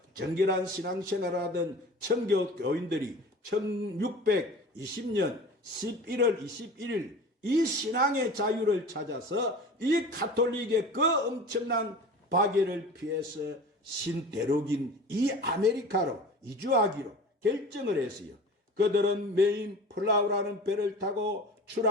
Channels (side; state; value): both; normal; correlation 0.38